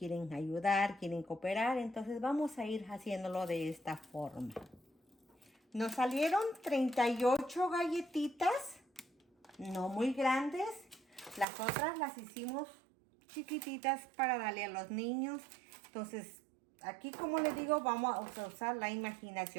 ayudar, quieren cooperar. Entonces vamos a ir haciéndolo de esta forma. Nos salieron 38 galletitas, no muy grandes. Las otras las hicimos chiquititas para darle a los niños. Entonces, aquí, como les digo, vamos a usar la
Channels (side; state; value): left; drops out; at 11.5 s